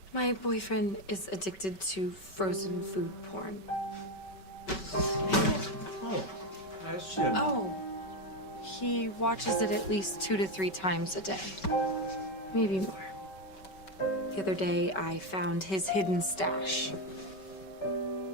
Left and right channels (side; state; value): right; late; 5.2 ms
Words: My boyfriend is addicted to frozen food porn. Oh, that's it. Oh, he watches it at least 2 to 3 times a day. Maybe more. The other day, I found his hidden stash.